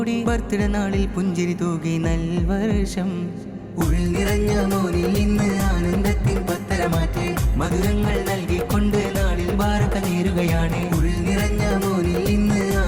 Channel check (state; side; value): identical; both; correlation 1.00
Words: ബർത്ത്ഡേ നാളിൽ പുഞ്ചിരി തൂകി നൽവർഷം. ഉൾനിറഞ്ഞ മോനിൽ ഇന്ന് ആനന്ദത്തിൻ പത്തര മാറ്റ്. മധുരങ്ങൾ നൽകിക്കൊണ്ട് നാളിൽ ബാറക നേരുകയാണ്. ഉൾനിറഞ്ഞ മോനിൽ ഇന്ന്